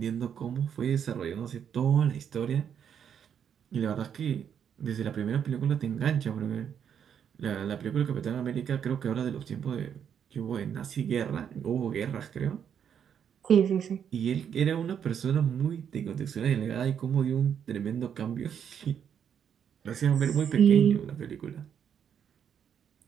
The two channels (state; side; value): quieter; left; 8.3 dB